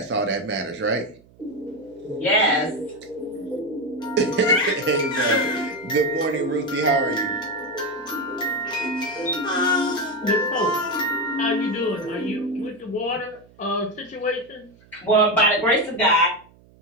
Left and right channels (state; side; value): noise; right; hum, 28 dB below the sound